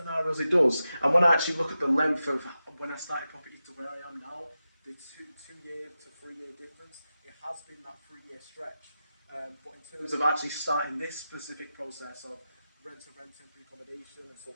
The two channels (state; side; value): inverted; both; correlation -0.92